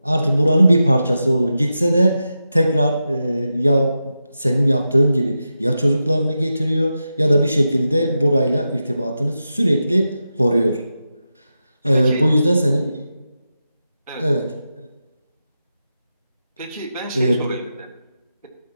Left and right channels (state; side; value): inverted; both; correlation -0.90